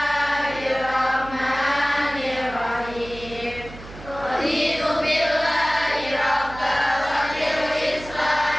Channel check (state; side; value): noise; right; hum, 15 dB below the sound